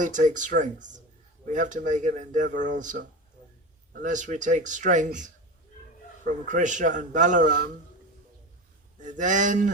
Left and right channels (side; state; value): both; normal; correlation 0.26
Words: we have to make an endeavor also. Unless we take strength from Krishna and Balarama,